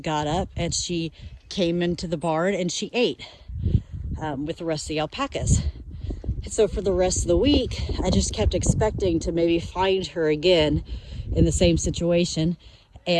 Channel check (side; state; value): both; identical; correlation 1.00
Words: up and she came into the barn and she ate with the rest of the alpacas. And so for the rest of the week, I just kept expecting to maybe find her again in the same situation,